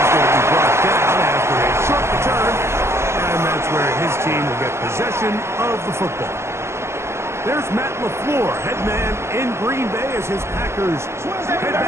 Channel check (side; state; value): left; late; 0.13 ms